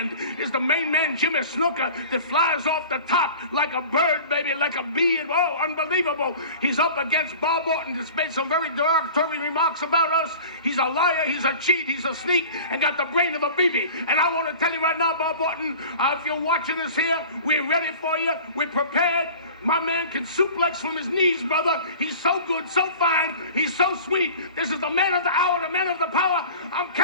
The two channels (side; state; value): both; inverted; correlation -0.40